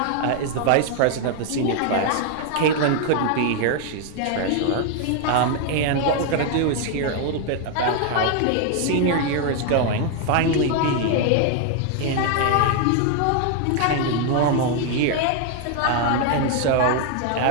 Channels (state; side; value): different; both; correlation 0.00